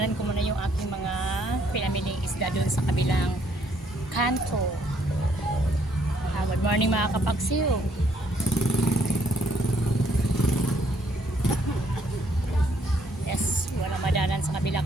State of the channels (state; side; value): normal; both; correlation 0.68